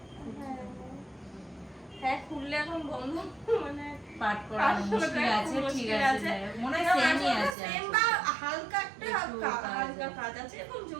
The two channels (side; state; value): left; drops out; at 7.6 s